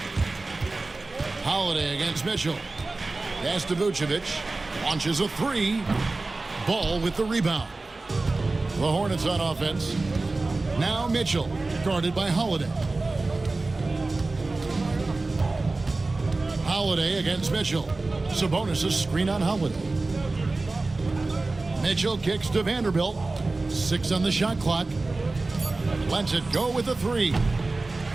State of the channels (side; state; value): left; quieter; 3.3 dB